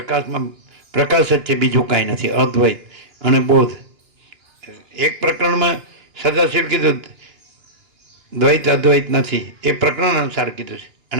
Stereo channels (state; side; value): late; left; 2.9 ms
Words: પ્રકાશ જ છે, બીજું કાંઈ નથી. અદ્વૈત અને બોધ. એક પ્રકરણમાં સદાશિવ કીધું દ્વૈત અદ્વૈત નથી, એ પ્રકરણ અનુસાર કીધું છે.